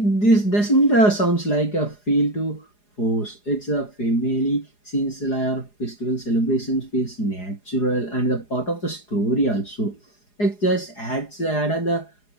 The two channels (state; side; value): late; right; 4.8 ms